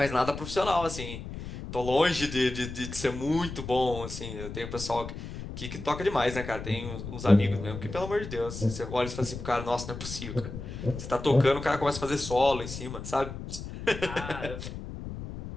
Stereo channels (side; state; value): left; noise; rumble, 9 dB below the sound